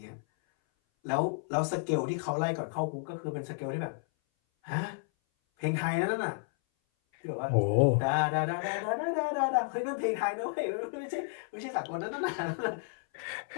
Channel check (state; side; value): silent; right; 57 dB below the other